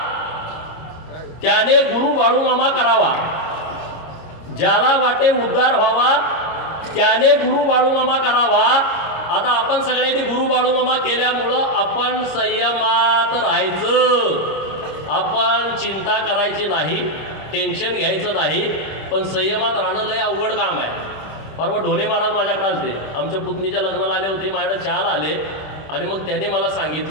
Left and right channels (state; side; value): late; right; 26 ms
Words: त्याने गुरु बाळू मामा करावा. ज्याला वाटे उद्धार व्हावा त्याने गुरु बाळू मामा करावा. आता आपण सगळ्यांनी गुरु बाळू मामा केल्यामुळं आपण संयमात राहायचं. आपण चिंता करायची नाही, टेन्शन घ्यायचं नाही, पण संयमात राहणं लय अवघड काम आहे. परवा ढोणे महाराज माझ्याकडे आले, आमच्या पुतणीच्या लग्नाला आले होते, माझ्याकडे चहाला आले आणि मग त्यांनी मला